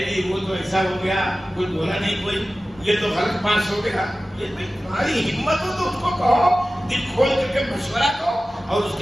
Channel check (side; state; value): both; normal; correlation 0.96